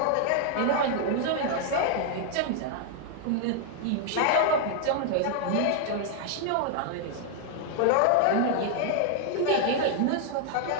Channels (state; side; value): different; both; correlation 0.00